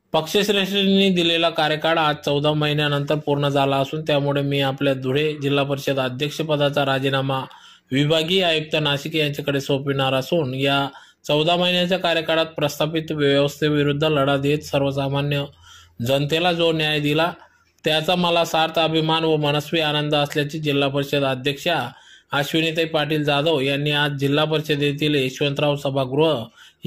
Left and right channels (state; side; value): identical; both; correlation 1.00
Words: पक्षश्रेष्ठींनी दिलेला कार्यकाळ आज 14 महिन्यानंतर पूर्ण झाला असून त्यामुळे मी आपल्या धुळे जिल्हा परिषद अध्यक्षपदाचा राजीनामा विभागीय आयुक्त नाशिक यांच्याकडे सोपविणार असून या 14 महिन्याच्या कार्यकाळात प्रस्थापित व्यवस्थेविरुद्ध लढा देत सर्वसामान्य जनतेला जो न्याय दिला त्याचा मला सार्थ अभिमान व मनस्वी आनंद असल्याचे जिल्हा परिषद अध्यक्षा अश्विनीताई पाटील जाधव यांनी आज जिल्हा परिषदेतील यशवंतराव सभागृह